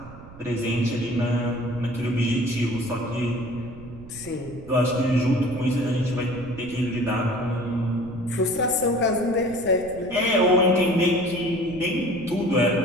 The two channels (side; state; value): right; noise; rumble, 17 dB below the sound